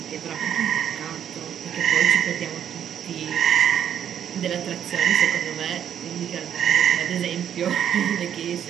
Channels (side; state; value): left; quieter; 9.4 dB